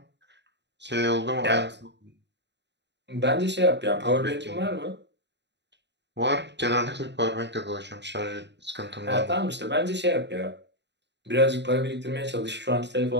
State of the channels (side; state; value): left; late; 0.51 ms